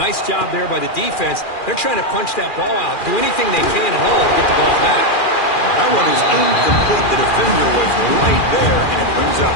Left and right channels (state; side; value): late; right; 2.4 ms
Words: job there by the defense. They're trying to punch that ball out, do anything they can at all to get the ball back. That one is incomplete. The defender was right there, and it brings up